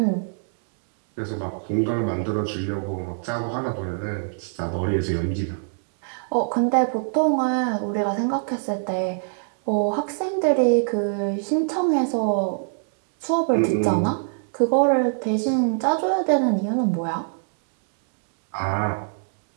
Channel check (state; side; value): silent; left; digital silence